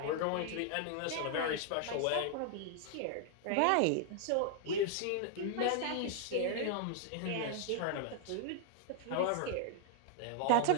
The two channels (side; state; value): both; different; correlation 0.00